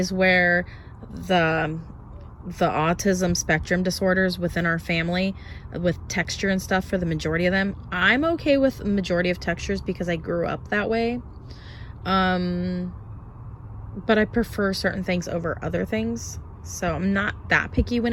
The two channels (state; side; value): identical; both; correlation 1.00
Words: where the autism spectrum disorders within our family, with texture and stuff, for the majority of them. I'm okay with the majority of textures because I grew up that way. But I prefer certain things over other things. So I'm not that picky when